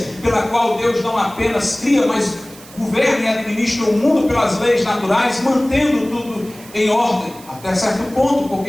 pela qual Deus não apenas cria, mas governa e administra o mundo pelas leis naturais, mantendo tudo em ordem, até certo ponto,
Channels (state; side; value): noise; right; hiss, 20 dB below the sound